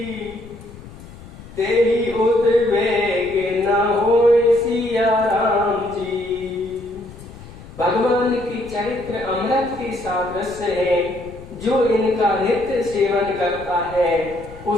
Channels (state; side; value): noise; left; rumble, 17 dB below the sound